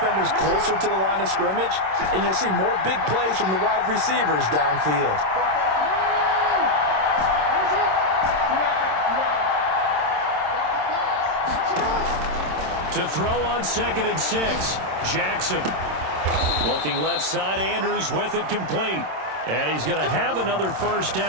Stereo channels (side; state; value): left; late; 26 ms